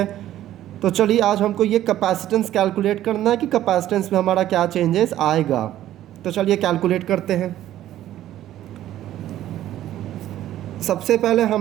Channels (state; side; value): quieter; left; 12.9 dB